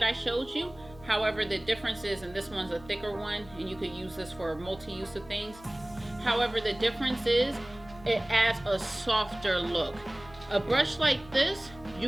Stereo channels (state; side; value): noise; left; hum, 20 dB below the sound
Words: I showed you. However, the difference is, and this one's a thicker one, and you could use this for multi-use of things. However, the difference is it adds a softer look. A brush like this,